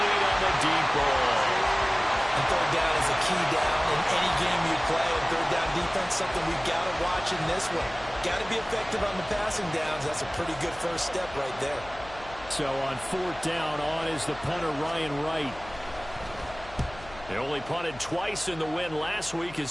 on the deep ball. And third down is a key down in any game you play. And third down defense, something we've got to watch in this one. Got to be effective on the passing downs. That's a pretty good first step right there. So on fourth down, on is the punter, Ryan Wright. They only punted twice in the win last week as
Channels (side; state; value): left; noise; hum, 18 dB below the sound